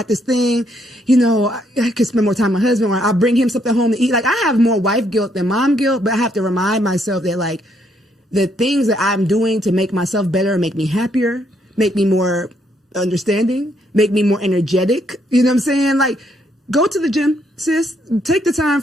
this thing, I could spend more time with my husband, or I'll bring him something home to eat. Like, I have more wife guilt than mom guilt, but I have to remind myself that, like, the things that I'm doing to make myself better, make me happier, make me more understanding, make me more energetic. You know what I'm saying? Like, go to the gym, sis. Take the time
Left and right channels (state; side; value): normal; both; correlation 0.72